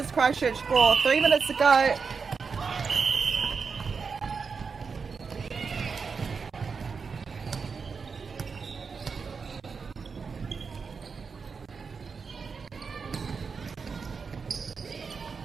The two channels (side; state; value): left; quieter; 5.3 dB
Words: Christchurch 4. 3 minutes to go.